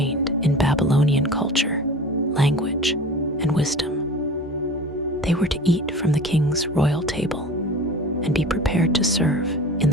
in Babylonian culture, language, and wisdom. They were to eat from the king's royal table and be prepared to serve in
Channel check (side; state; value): both; normal; correlation 0.38